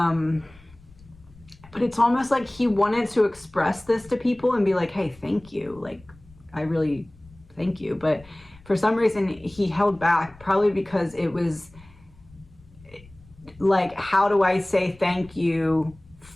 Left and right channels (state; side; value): noise; left; rumble, 25 dB below the sound